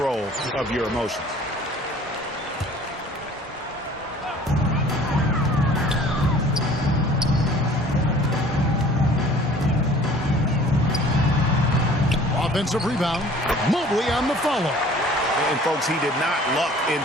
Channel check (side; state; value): both; normal; correlation 0.50